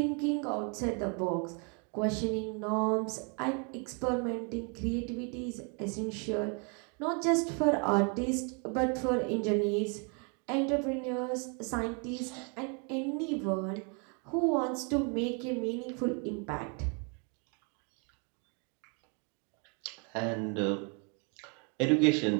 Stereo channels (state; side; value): quieter; left; 36.4 dB